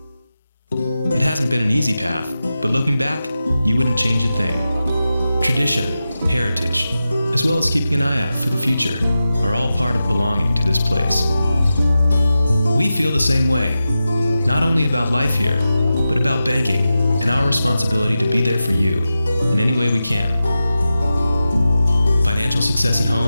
It hasn't been an easy path, but looking back, you wouldn't change a thing. Tradition, heritage, as well as keeping an eye out for the future, are all part of belonging to this place. We feel the same way, not only about life here, but about banking and our responsibility to be there for you in any way we can. Financial success at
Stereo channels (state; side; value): inverted; both; correlation -0.92